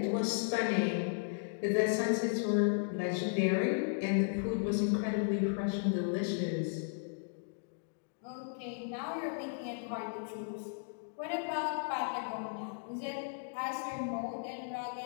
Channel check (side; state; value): right; silent; digital silence